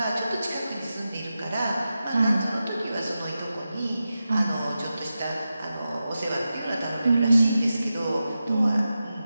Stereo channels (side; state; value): both; inverted; correlation -0.92